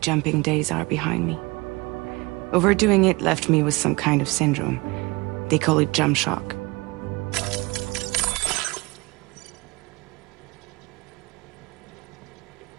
days are behind me. Overdoing it left me with some kind of syndrome. They call it jump shock.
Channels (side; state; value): left; quieter; 24.3 dB